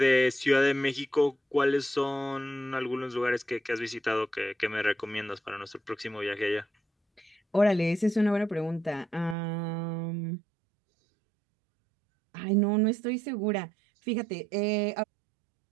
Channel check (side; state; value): left; drops out; at 9.3 s